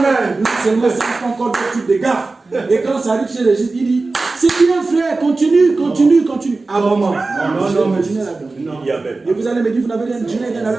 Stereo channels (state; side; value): quieter; left; 3.6 dB